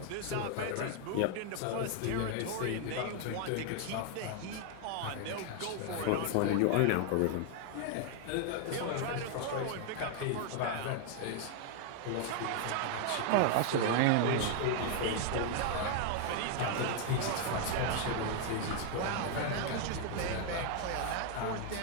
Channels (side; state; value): both; different; correlation 0.00